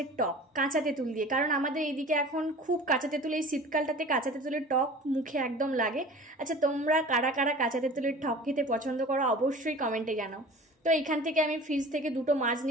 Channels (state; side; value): normal; both; correlation 0.41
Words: টক কাঁচা তেঁতুল দিয়ে। কারণ আমাদের এইদিকে এখন খুব কাঁচা তেঁতুল, এই শীতকালটাতে কাঁচা তেঁতুলের টক মুখে একদম লাগে। আচ্ছা, তোমরা কারা কারা কাঁচা তেঁতুলের টক খেতে পছন্দ করো অবশ্যই কমেন্টে জানাও। তো এইখান থেকে আমি ফ্রিজ থেকে দুটো মাছ